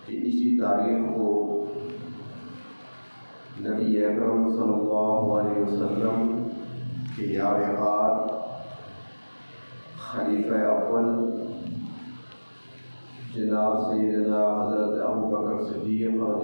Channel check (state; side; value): inverted; both; correlation -1.00